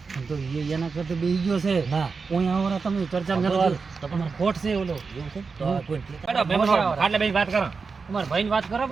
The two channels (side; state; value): left; quieter; 4.8 dB